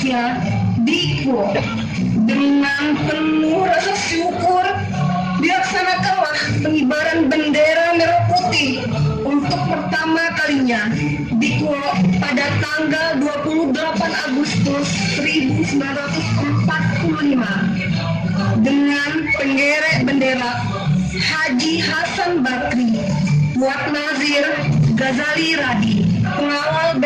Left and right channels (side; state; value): both; identical; correlation 1.00